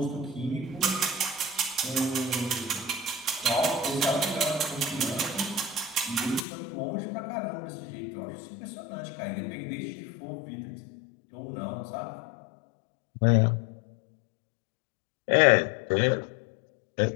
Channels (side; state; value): right; drops out; at 6.5 s